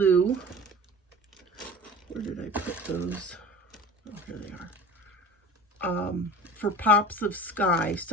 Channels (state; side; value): normal; both; correlation 0.38